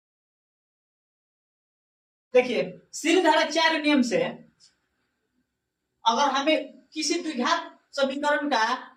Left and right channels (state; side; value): identical; both; correlation 1.00